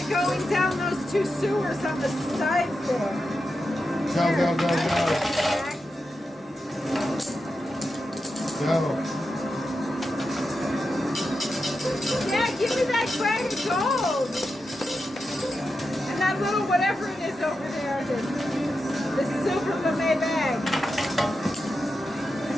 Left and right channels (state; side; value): normal; both; correlation 0.89